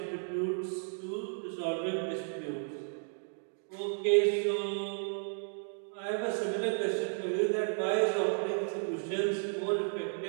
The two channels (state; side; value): silent; left; 55 dB below the other